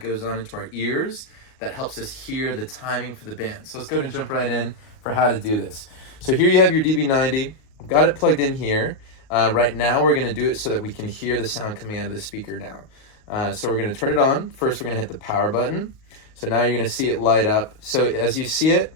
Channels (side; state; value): right; late; 38 ms